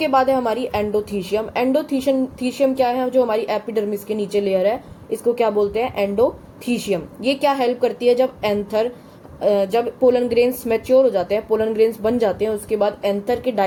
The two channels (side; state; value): both; identical; correlation 1.00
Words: बाद है हमारी एंडोथीशियम। एंडोथीशियम क्या है? जो हमारी एपिडर्मिस के नीचे लेयर है इसको क्या बोलते हैं? एंडोथीशियम। ये क्या हेल्प करती है? जब पोलन ग्रेन्स मैच्योर हो जाते हैं, पोलन ग्रेन्स बन जाते हैं, उसके बाद एंथर के